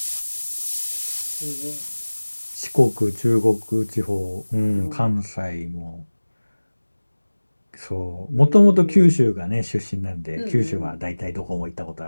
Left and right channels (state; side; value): inverted; both; correlation -1.00